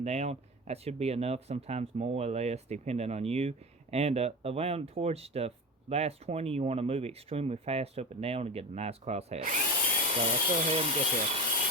down. That should be enough, sometimes more or less, depending on you. And around towards the last 20, you want to move extremely fast up and down to get a nice crosshatch. So let's go ahead and get there.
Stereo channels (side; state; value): both; normal; correlation 0.27